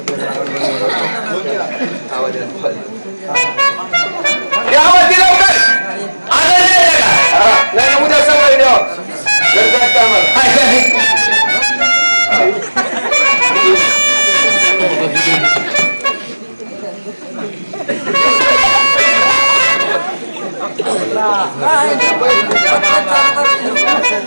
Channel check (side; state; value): both; inverted; correlation -1.00